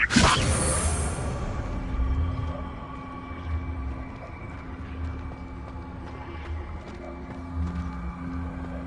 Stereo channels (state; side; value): identical; both; correlation 1.00